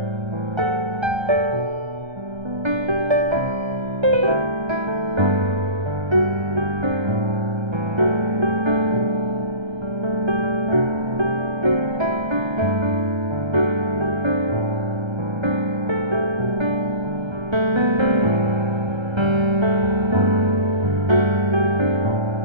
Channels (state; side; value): late; left; 1.3 ms